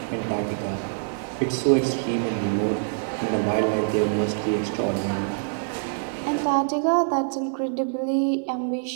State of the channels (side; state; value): left; silent; digital silence